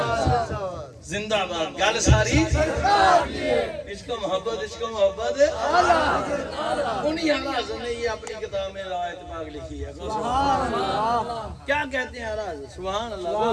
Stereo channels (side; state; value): both; identical; correlation 1.00